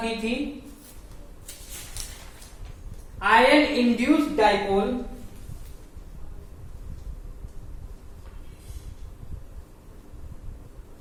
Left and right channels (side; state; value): both; identical; correlation 1.00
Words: की थी, आयन इंड्यूस्ड डाइपोल,